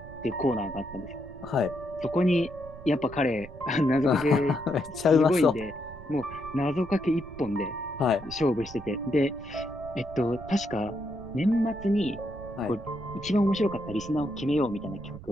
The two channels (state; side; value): noise; right; rumble, 16 dB below the sound